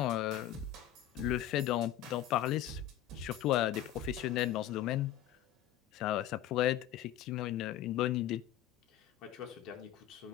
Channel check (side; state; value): right; quieter; 12.0 dB